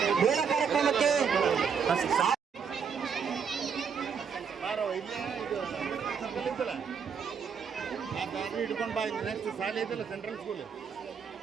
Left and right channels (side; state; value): left; quieter; 6.6 dB